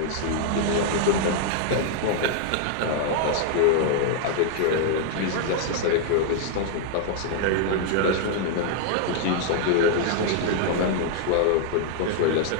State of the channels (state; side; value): different; both; correlation -0.01